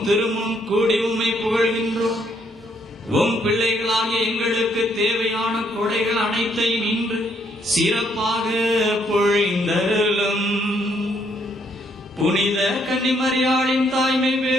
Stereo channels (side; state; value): both; normal; correlation 0.71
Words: திருமுன் கூடி உம்மை புகழ்கின்றோம். உம் பிள்ளைகளாகிய எங்களுக்கு தேவையான கொடைகள் அனைத்தையும் இன்று சிறப்பாக பொழிந்தருளும். புனித கன்னிமரியாளின் தாய்மை